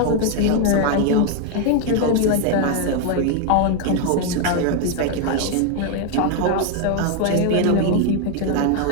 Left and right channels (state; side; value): different; both; correlation 0.01